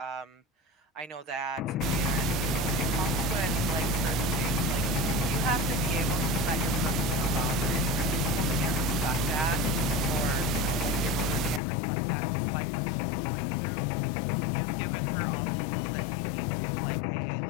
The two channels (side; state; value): right; drops out; at 11.6 s